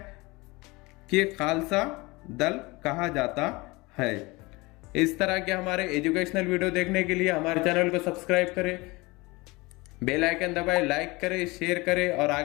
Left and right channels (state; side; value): quieter; right; 23.6 dB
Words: कि खालसा दल कहा जाता है। इस तरह के हमारे एजुकेशनल वीडियो देखने के लिए हमारे चैनल को सब्सक्राइब करें, बेल आइकन दबाएं, लाइक करें, शेयर करें और